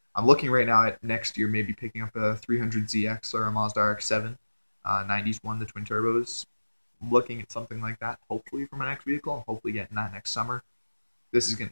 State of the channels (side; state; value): both; inverted; correlation -1.00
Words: I'm looking right now at next year maybe picking up a 300ZX or a Mazda RX-7, 90s one, the twin turbos. Looking at something like that, hopefully for my next vehicle, and hopefully getting that next summer.